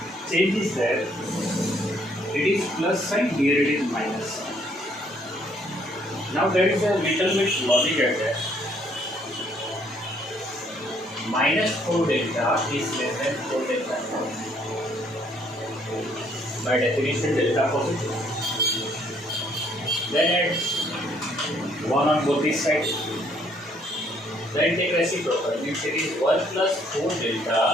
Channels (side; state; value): both; normal; correlation 0.66